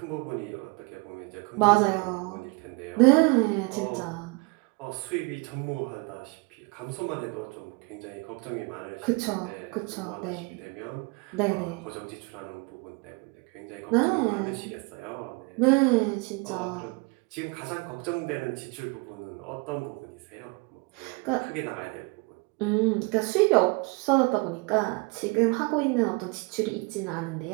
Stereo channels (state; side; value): quieter; left; 28.9 dB